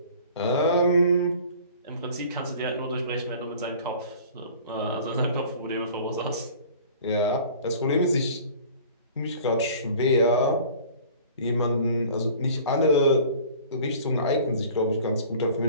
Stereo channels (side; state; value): both; inverted; correlation -0.46